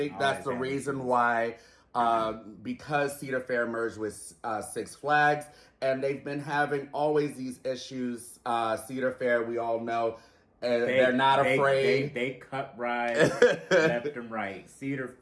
that's the reason why, because Cedar Fair merged with Six Flags, and they've been having always these issues. Cedar Fair, we all know, they're not afraid. They cut rides left and right. Cedar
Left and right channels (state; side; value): identical; both; correlation 1.00